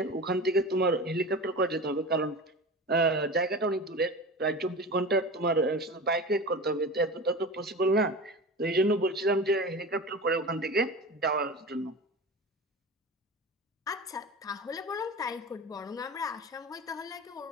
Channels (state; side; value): normal; both; correlation 0.31